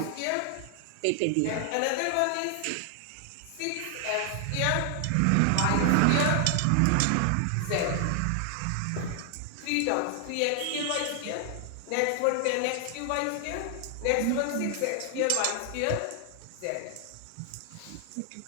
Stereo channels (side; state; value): both; different; correlation 0.00